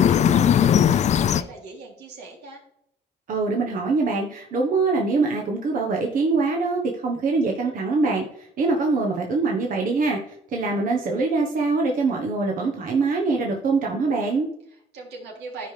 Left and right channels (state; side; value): normal; both; correlation 0.53